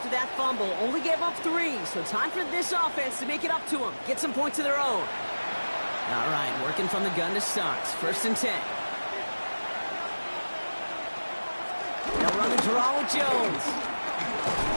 that fumble. Only gave up 3, so time for this offense to make it up to them. Get some points of their own. All right, working from the gun to start. First and 10. They'll run the draw with Jones.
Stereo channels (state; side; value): inverted; both; correlation -1.00